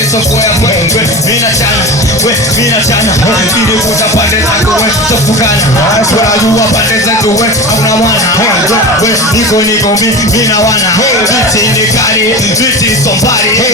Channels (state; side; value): normal; both; correlation 0.28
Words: soko ya wewe mina chana ili kutapande zako wewe tofukana tunajua pande zetu wewe hauna mwana wewe niko mimi na wana viti sombari